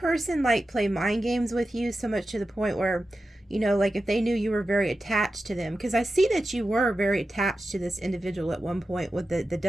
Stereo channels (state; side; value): normal; both; correlation 0.92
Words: like, play mind games with you so much to the point where, you know, like, if they knew you were very attached to them? Because I see that you were very attached to this individual at one point with the